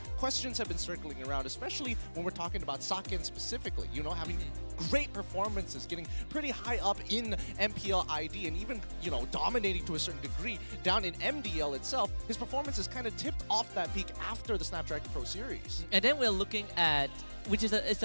questions have been circling around, especially when we're talking about Saken specifically. You know, having great performances, getting pretty high up in MPL ID, and even, you know, dominating to a certain degree down in MDL itself. His performance is kind of tipped off that peak after the Snapdragon Pro Series. And then we're looking at, which is it's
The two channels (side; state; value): both; inverted; correlation -1.00